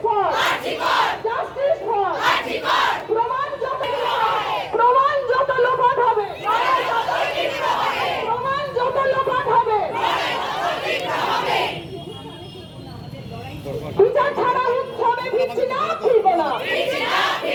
for, justice for. প্রমাণ যত লোপাট হবে, প্রমাণ যত লোপাট হবে, বিচার ছাড়া উৎসবে ফিরছি না, ফিরবো না,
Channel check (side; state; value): both; identical; correlation 1.00